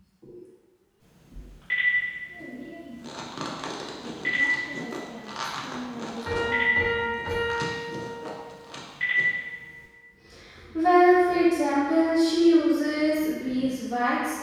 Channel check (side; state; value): both; identical; correlation 1.00